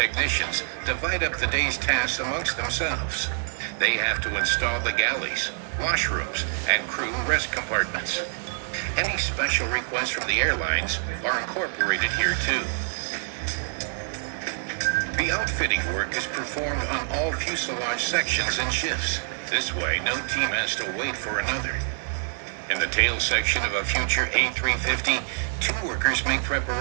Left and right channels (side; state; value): left; silent; digital silence